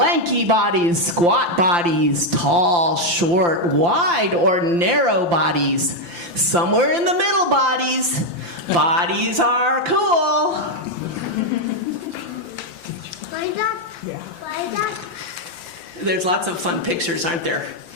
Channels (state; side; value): late; left; 5.8 ms